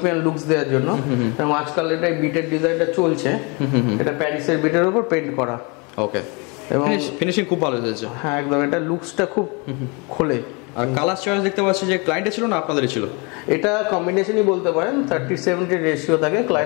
লুকস দেওয়ার জন্য, এবং আজকাল এটা বিটের ডিজাইনটা চলছে। এটা প্যারিসের বিটের উপর পেইন্ট করা। ওকে, এবং ফিনিশিং খুব ভালো হয়েছে। হ্যাঁ, একদম। এটা লুকসটা খুব খোলে। আর কালার চয়েস দেখতে পাচ্ছি যে ক্লায়েন্টের ছিল না আপনাদেরই ছিল? এটা কম্বিনেশনই বলতে পারেন, 30-70 রেশিও থাকে।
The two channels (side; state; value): right; quieter; 30.5 dB